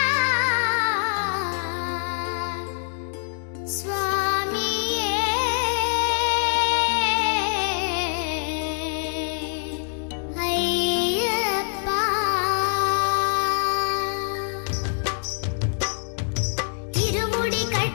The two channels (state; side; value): silent; right; 62 dB below the other